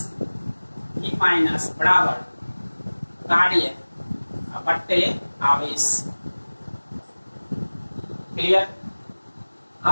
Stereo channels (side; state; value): both; inverted; correlation -1.00